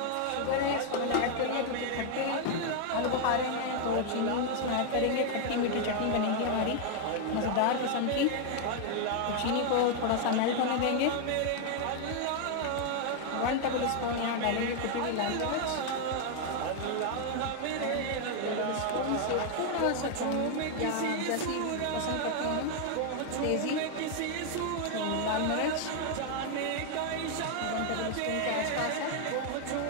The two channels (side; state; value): both; different; correlation 0.00